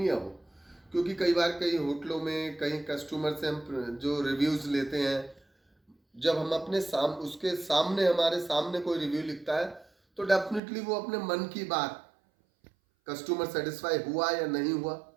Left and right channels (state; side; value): drops out; left; at 10.6 s